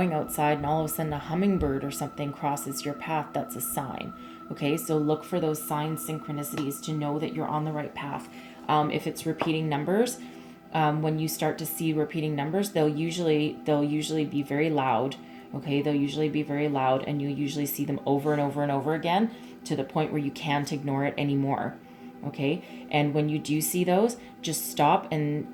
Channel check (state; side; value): identical; both; correlation 1.00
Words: outside and all of a sudden a hummingbird or something crosses your path, that's a sign. Okay, so look for those signs, synchronicities to know that you're on the right path. If it's repeating numbers, when you start to see repeating numbers, they'll usually be very loud. Okay, they'll usually be very loud, and you'll usually see them over and over and over again to the point where you can't ignore it anymore. Okay, and when you do see those, just stop